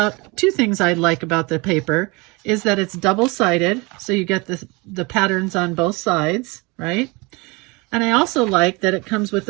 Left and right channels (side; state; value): left; quieter; 26.8 dB